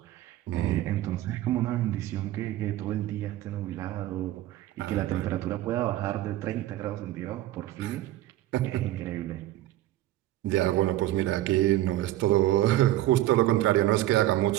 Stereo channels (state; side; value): quieter; left; 14.9 dB